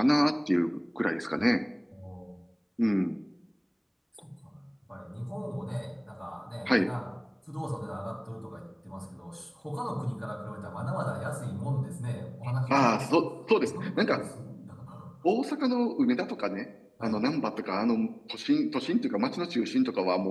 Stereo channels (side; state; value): both; identical; correlation 1.00